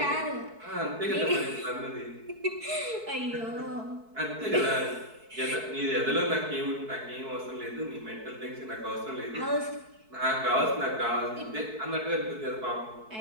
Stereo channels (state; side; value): late; left; 4.6 ms